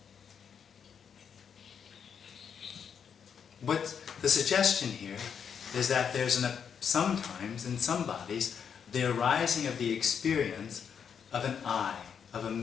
What's the suggestion here is that there's sometimes in some bodies the arising of the experience of an I, of a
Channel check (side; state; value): right; quieter; 7.3 dB